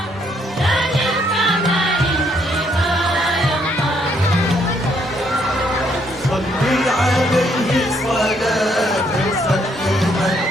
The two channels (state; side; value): normal; both; correlation 0.70